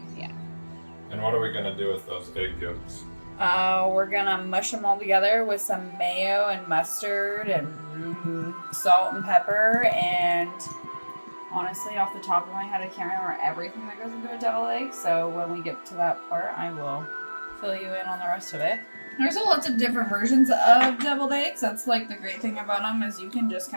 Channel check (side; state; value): both; inverted; correlation -1.00